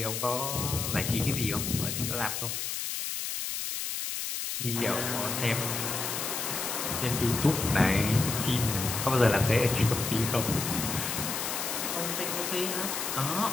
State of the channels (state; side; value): noise; left; hiss, 3 dB below the sound